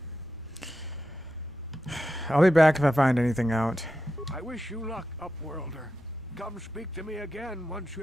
I'll be back if I find anything out. I wish you luck, Upworlder. Come speak to me again once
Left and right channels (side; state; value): both; normal; correlation 0.89